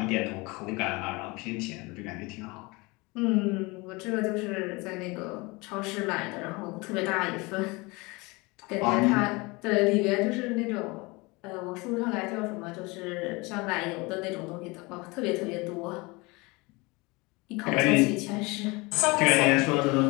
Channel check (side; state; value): right; quieter; 25.1 dB